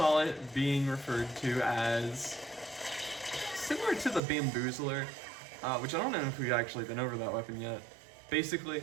it being referred to as similar to the Bamboozler, which I don't know if we've actually been over that weapon yet.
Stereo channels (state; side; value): drops out; left; at 4.2 s